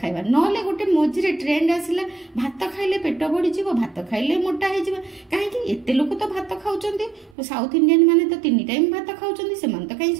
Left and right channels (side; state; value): left; drops out; at 7.4 s